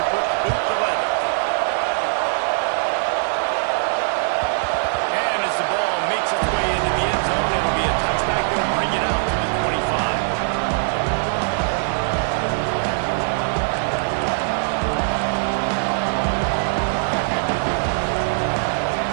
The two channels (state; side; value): silent; left; 63 dB below the other